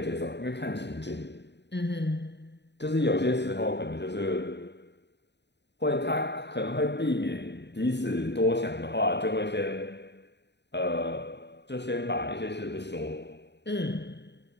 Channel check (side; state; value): right; late; 0.50 ms